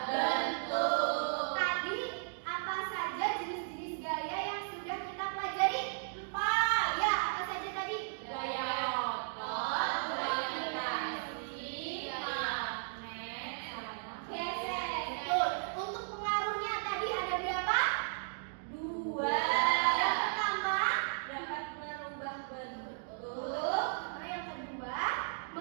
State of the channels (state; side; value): silent; left; digital silence